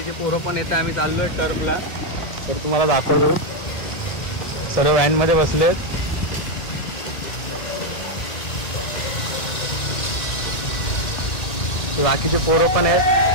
पोरं पण येते. आम्ही चाललोय टर्फला. तर तुम्हाला दाखवतो, सर्व व्हॅनमध्ये बसलेत. बाकीचे पोरं पण आहेत.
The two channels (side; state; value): right; late; 1.8 ms